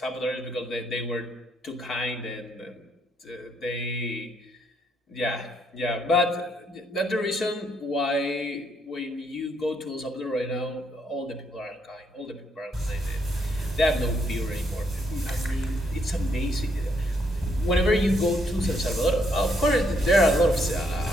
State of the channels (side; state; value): both; normal; correlation 0.73